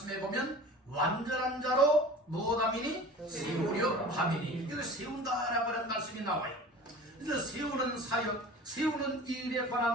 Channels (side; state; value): both; normal; correlation 0.39